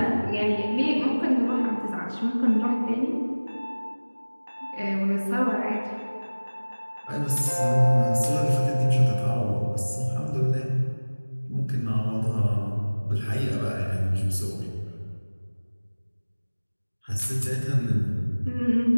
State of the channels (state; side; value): inverted; both; correlation -1.00